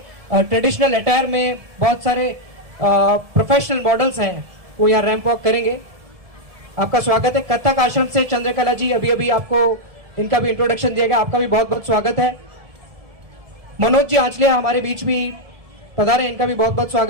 ट्रेडिशनल अटायर में बहुत सारे प्रोफेशनल मॉडल्स हैं, वो यहाँ रैंप वॉक करेंगे, आपका स्वागत है। कथक आश्रम से चंद्रकला जी, अभी आपको इनका भी इंट्रोडक्शन दिया गया, आपका भी बहुत बहुत स्वागत है। मनोज जी आंचलिया हमारे बीच भी पधारे, इनका भी बहुत बहुत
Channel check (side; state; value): left; late; 1.7 ms